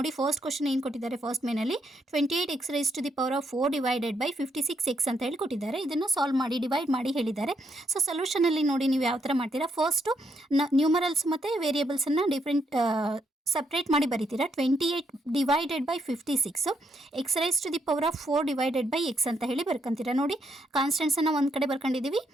first question ಏನು ಕೊಟ್ಟಿದ್ದಾರೆ, ಫಸ್ಟ್ ಮೇನಲ್ಲಿ 28x raised to the power of 4 divided by 56x ಅಂತ ಹೇಳಿ ಕೊಟ್ಟಿದ್ದಾರೆ. ಇದನ್ನು ಸಾಲ್ವ್ ಮಾಡಿ ಡಿವೈಡ್ ಮಾಡಿ ಹೇಳಿದ್ದಾರೆ. ಸೊ ಸೊಲ್ಯೂಷನ್ ಅಲ್ಲಿ ನೋಡಿ ನೀವು ಯಾವ ತರ ಮಾಡ್ತೀರಾ, ಫಸ್ಟ್ ನ್ಯೂಮರಲ್ಸ್ ಮತ್ತೆ ವೇರಿಯೇಬಲ್ಸ್ ಅನ್ನ ಡಿಫರೆಂಟ್ ಸಪ್ರೇಟ್ ಮಾಡಿ ಬರೀತೀರಾ. 28 divided by 56 x raise to the power of 4 divided by x ಅಂತ ಹೇಳಿ ಬರ್ಕೊಂತೀರಾ. ನೋಡಿ ಕಾನ್ಸ್ಟೆಂಟ್ಸ್ ಅನ್ನ ಒಂದು ಕಡೆ ಬರ್ಕೊಂಡಿದ್ದೀವಿ,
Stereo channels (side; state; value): both; normal; correlation 0.76